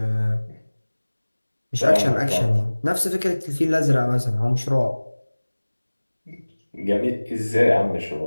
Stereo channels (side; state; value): both; inverted; correlation -1.00